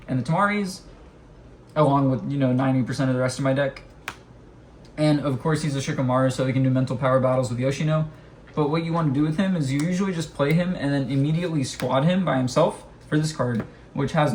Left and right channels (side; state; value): both; identical; correlation 1.00